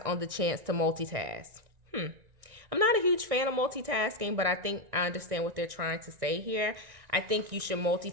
the chance to multitask. I'm not a huge fan of multitasking, but I think I understand what they're trying to say here. I think you should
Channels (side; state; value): left; late; 1.6 ms